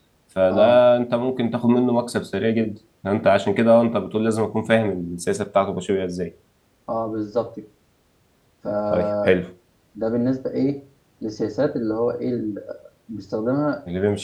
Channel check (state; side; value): identical; both; correlation 1.00